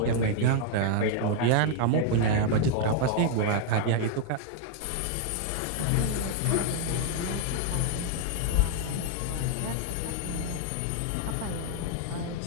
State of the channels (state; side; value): different; both; correlation 0.00